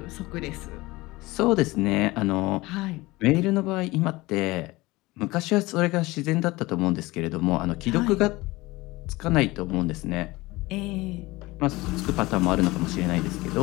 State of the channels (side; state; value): right; quieter; 20.8 dB